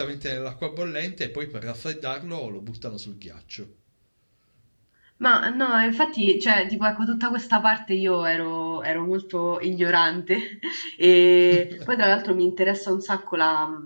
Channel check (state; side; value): inverted; both; correlation -1.00